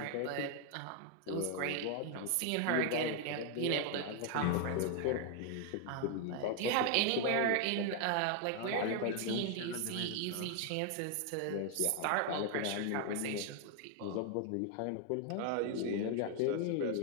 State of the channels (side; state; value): both; different; correlation 0.00